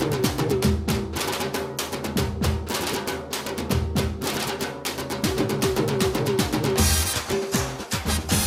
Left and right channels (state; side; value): identical; both; correlation 1.00